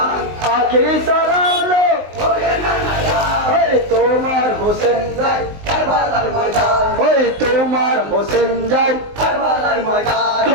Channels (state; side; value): late; left; 19 ms